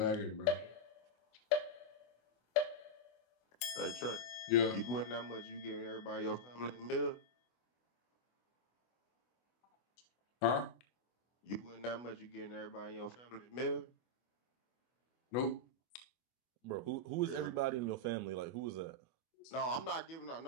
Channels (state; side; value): late; right; 24 ms